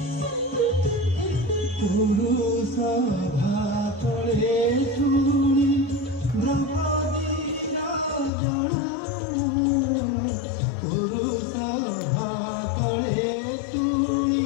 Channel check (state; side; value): drops out; right; at 8.3 s